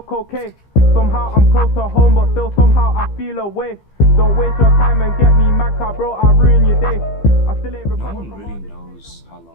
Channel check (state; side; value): late; right; 15 ms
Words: okay? Somehow I'm close to home, but still somehow I feel away. Don't waste your time and get me mad, car, bro, I'll ruin your day. I still ain't No recovered one from really all this. knows how